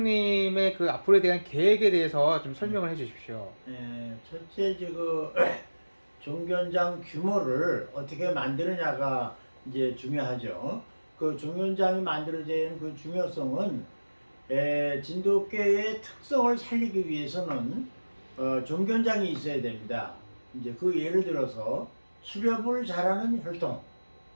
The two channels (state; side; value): inverted; both; correlation -1.00